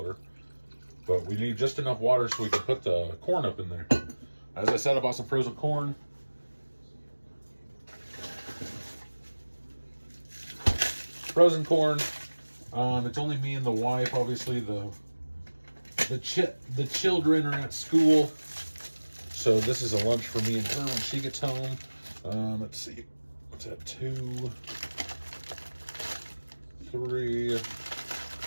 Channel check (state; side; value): inverted; both; correlation -1.00